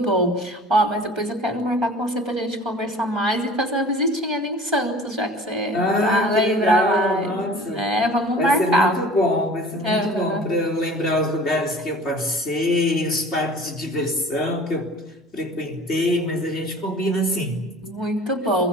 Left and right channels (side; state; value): both; normal; correlation 0.45